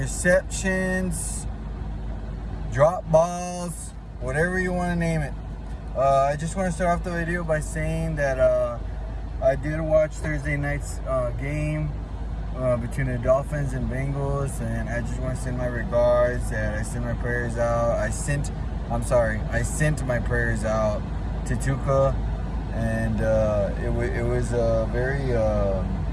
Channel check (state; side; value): identical; both; correlation 1.00